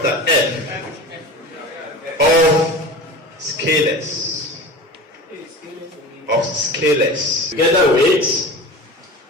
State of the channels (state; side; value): normal; both; correlation 0.33